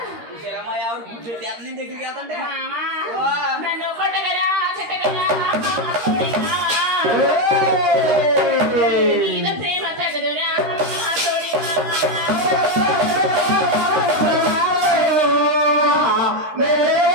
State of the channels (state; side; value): late; left; 13 ms